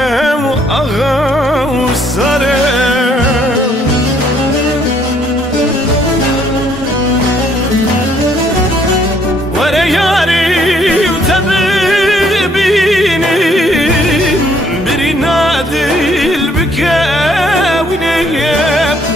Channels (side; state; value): both; normal; correlation 0.66